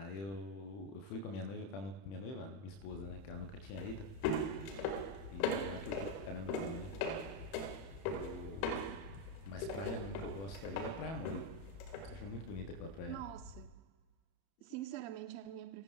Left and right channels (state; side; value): late; right; 31 ms